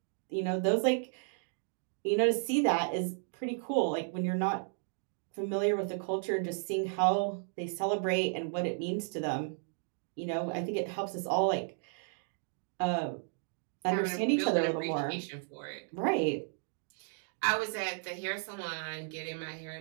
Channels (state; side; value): silent; left; 55 dB below the other